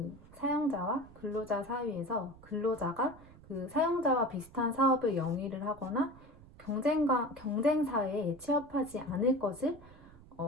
사용자와 근로자 사이에서 근로자가 그 사용자와 비슷한 사업을 영위를 하거나 경쟁사에 취업하지 않을 것을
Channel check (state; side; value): noise; right; rumble, 21 dB below the sound